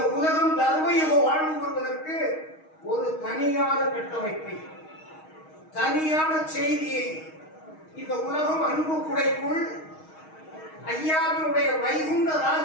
உலகம் தர்மயுக வாழ்வு வருவதற்கு ஒரு தனியான கட்டமைப்பை, தனியான செய்தியை இந்த உலகம் அன்பு குடைக்குள் ஐயாவினுடைய வைகுண்ட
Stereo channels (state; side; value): late; right; 6.4 ms